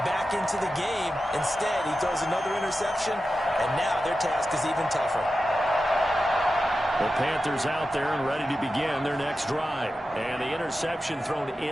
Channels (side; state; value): both; normal; correlation 0.92